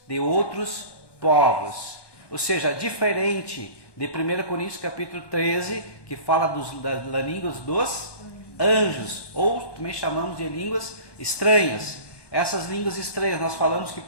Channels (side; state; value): right; late; 1.2 ms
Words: de outros povos. Ou seja, diferente de 1 Coríntios capítulo 13, que fala das línguas dos anjos, ou também chamamos de línguas estranhas. Essas línguas estranhas nós falamos que